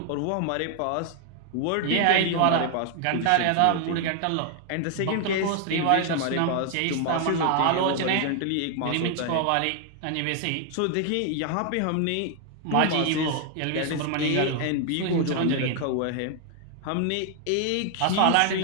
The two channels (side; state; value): both; different; correlation 0.00